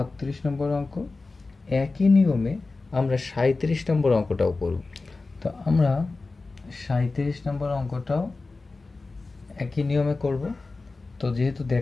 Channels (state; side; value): quieter; right; 3.7 dB